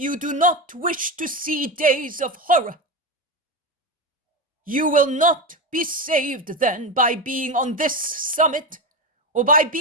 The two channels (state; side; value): normal; both; correlation 0.17